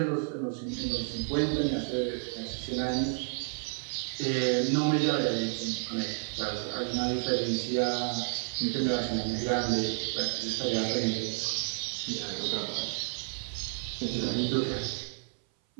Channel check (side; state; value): left; silent; 57 dB below the other